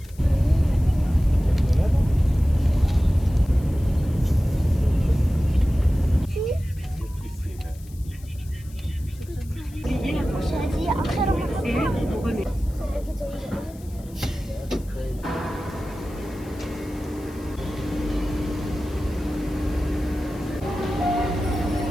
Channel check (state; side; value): noise; left; hiss, 24 dB below the sound